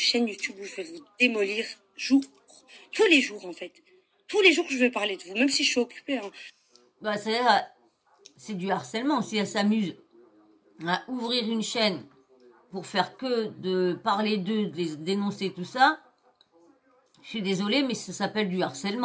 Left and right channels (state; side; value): identical; both; correlation 1.00